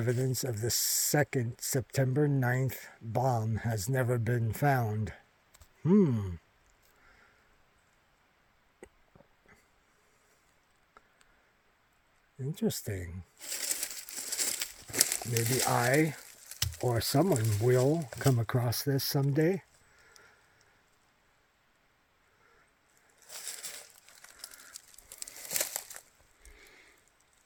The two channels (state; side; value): identical; both; correlation 1.00